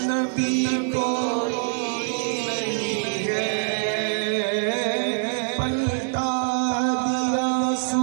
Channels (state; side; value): silent; left; digital silence